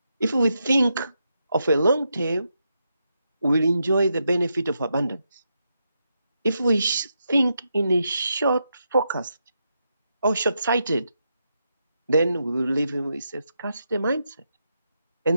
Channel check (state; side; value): inverted; both; correlation -0.84